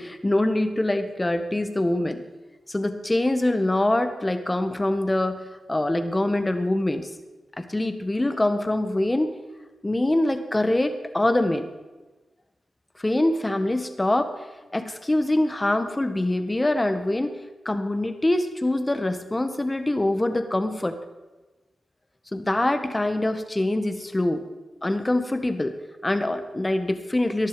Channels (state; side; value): normal; both; correlation 0.98